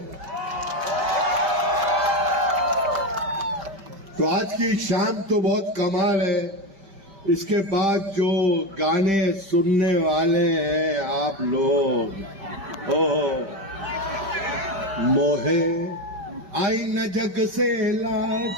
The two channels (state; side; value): late; left; 5.1 ms